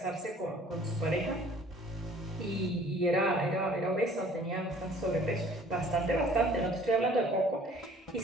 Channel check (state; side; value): normal; both; correlation 0.54